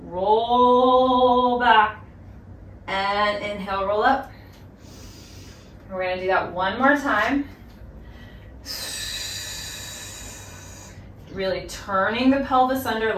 Roll back. And inhale, roll up. We're going to do that one more time. Really turning the pelvis under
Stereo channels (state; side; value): identical; both; correlation 1.00